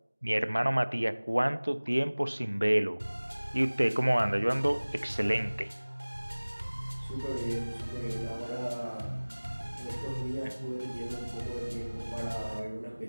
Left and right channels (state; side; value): inverted; both; correlation -1.00